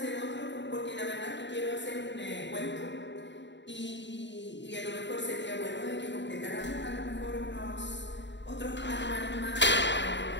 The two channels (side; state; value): right; late; 0.52 ms